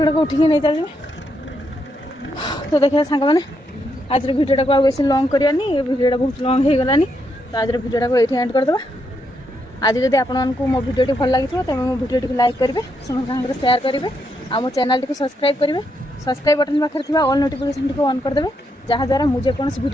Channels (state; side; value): normal; both; correlation 0.79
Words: ଗୁଡ଼ାକ ଉଠିକି ନେଇ ଚାଲିଯିବେ। ତ ଦେଖିବା ସାଙ୍ଗମାନେ, ଆଜିର ଭିଡ଼ିଓଟାକୁ ଆଉ ବେଶୀ ଲଙ୍ଗ୍ କରିବାନି, ଏ ଭିଡ଼ିଓଟା ବହୁତ ଲଙ୍ଗ୍ ହେଇଗଲାନି। ତ ଆଜିର ଭିଡ଼ିଓଟାକୁ ଏଇଠି ଏଣ୍ଡ କରିଦେବା। ଆଜି ଯଦି ଆପଣମାନଙ୍କୁ ମୋ ଭିଡ଼ିଓଟି ଭଲ ଲାଗିଥିବ, ତେବେ ମୋ ଭିଡ଼ିଓଟିକୁ ଲାଇକ୍ କରିବେ, ସମସ୍ତଙ୍କ ସାଙ୍ଗରେ ସେୟାର କରିବେ, ଆଉ ମୋ ଚ୍ୟାନେଲଟିକୁ ସବସ୍କ୍ରାଇବ୍ କରିବେ। ସବସ୍କ୍ରାଇବ୍ ବଟନ୍ ପାଖରେ ଥିବା ଅଲ୍ ନୋଟିଫିକେସନ୍ଟିକୁ ଅନ୍ କରିଦେବେ, ଯାହାଦ୍ୱାରା ମୁଁ ଯେକୌଣସି